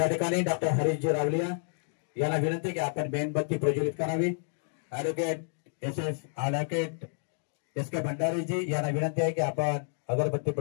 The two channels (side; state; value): right; silent; digital silence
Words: ठिकाणी डॉक्टर हरीशजी रावलिया यांना विनंती की आपण मेणबत्ती प्रज्वलित करावी. ॲडव्होकेट ॲडव्होकेट एस के भंडारीजी यांना विनंती आहे की आपण अगरबत्ती